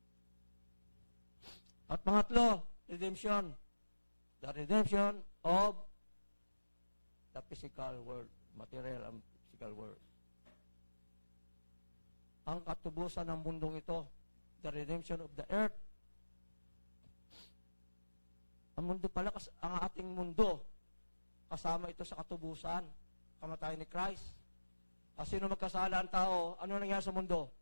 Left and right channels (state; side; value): inverted; both; correlation -1.00